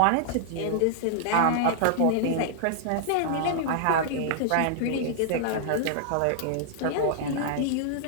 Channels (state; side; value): different; both; correlation -0.01